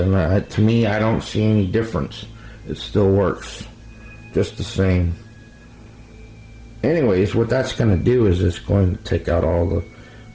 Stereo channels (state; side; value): identical; both; correlation 1.00